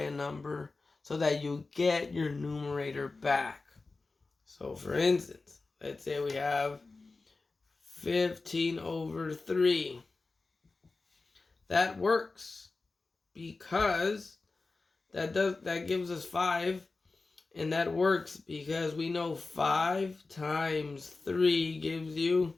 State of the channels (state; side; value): quieter; right; 3.7 dB